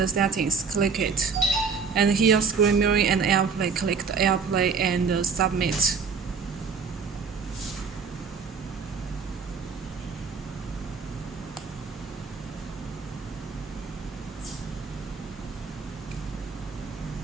settings, click it. And here screen mirroring and Airplay, click the Airplay and submit.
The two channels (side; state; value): left; quieter; 5.4 dB